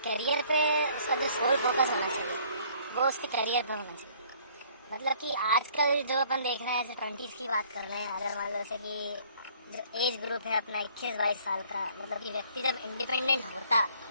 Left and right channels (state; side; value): inverted; both; correlation -0.58